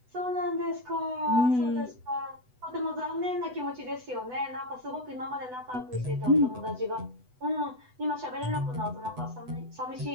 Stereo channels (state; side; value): late; left; 8.0 ms